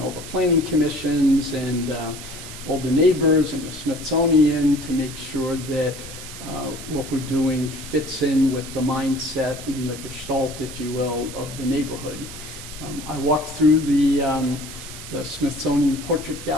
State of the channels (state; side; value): noise; right; hiss, 12 dB below the sound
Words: all the planning commissions and all the neighbors and the Smithsonian to make sure that what we're doing fits in with the mindset and the gestalt, if you will, of the neighborhood. I walked through the Smithsonian Portrait